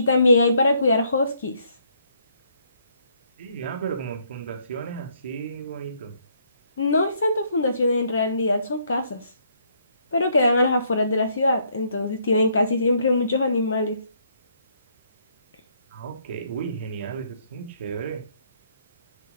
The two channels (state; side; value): inverted; both; correlation -0.69